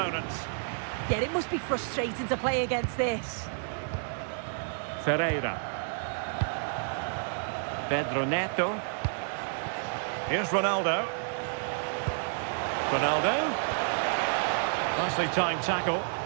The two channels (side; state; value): left; silent; digital silence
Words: Yeah, it must be frustrating to play against this. Ferreira. Pedro Neto. Here's Ronaldo. Ronaldo. Nicely timed tackle.